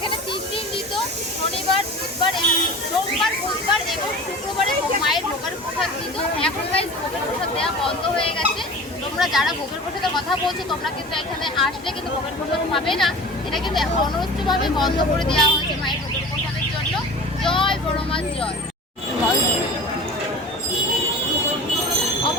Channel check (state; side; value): normal; both; correlation 0.37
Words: 3 দিন দিত, শনিবার, সোমবার, বুধবার এবং শুক্রবারে মায়ের ভোগের প্রসাদ দিত। এখন গাইস ভোগের প্রসাদ দেওয়া বন্ধ হয়ে গেছে। তোমরা যারা ভোগের প্রসাদের কথা বলছো তোমরা কিন্তু এখানে আসলে কিন্তু ভোগের প্রসাদ পাবে না। এটা কিন্তু অনবরতভাবে বন্ধ করে দেওয়া হয়েছে মায়ের ভোগের প্রসাদের জন্য। জয় বড়মার জয়।